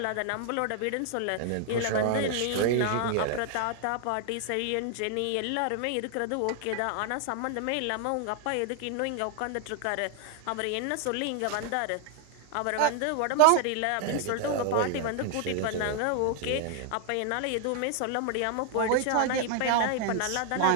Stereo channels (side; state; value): both; different; correlation 0.00